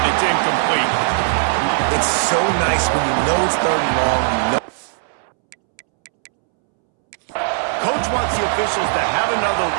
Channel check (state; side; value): silent; left; 67 dB below the other